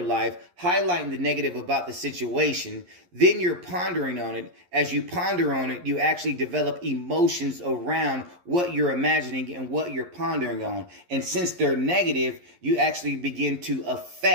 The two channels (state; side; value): late; left; 11 ms